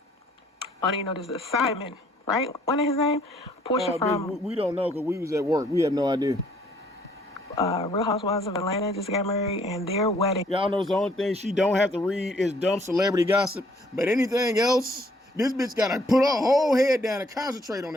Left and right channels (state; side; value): normal; both; correlation 0.63